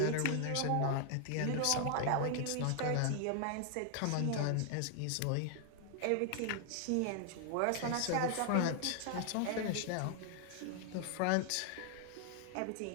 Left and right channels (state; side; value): different; both; correlation 0.00